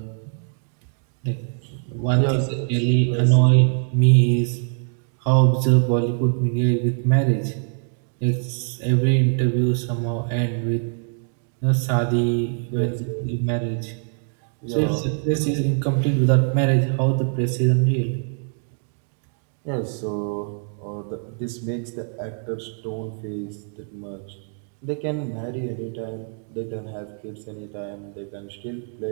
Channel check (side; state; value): left; silent; 57 dB below the other